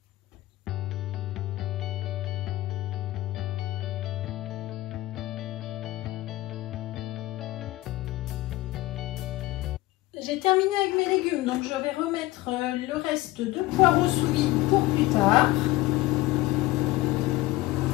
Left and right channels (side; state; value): right; quieter; 18.0 dB